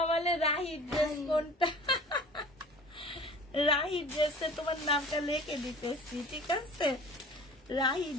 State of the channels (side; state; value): both; normal; correlation 0.43